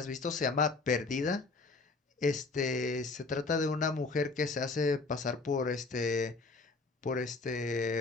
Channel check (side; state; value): right; quieter; 3.8 dB